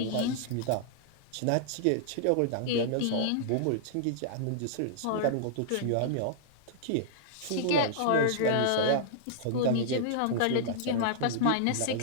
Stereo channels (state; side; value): different; both; correlation -0.01